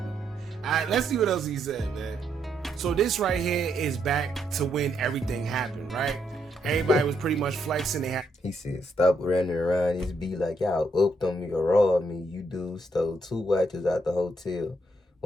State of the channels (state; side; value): normal; both; correlation 0.76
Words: right, let's see what else he said, man. So this right here is back to when everything happened, right? Everybody was pretty much flexing. He said, stop running around this be like y'all upped on me or robbed me. You dudes stole 2 watches out the hotel.